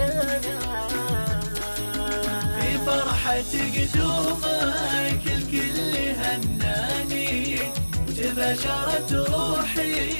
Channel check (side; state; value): both; inverted; correlation -1.00